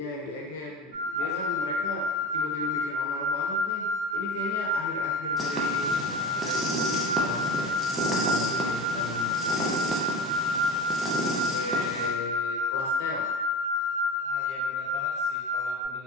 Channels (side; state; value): both; normal; correlation 0.31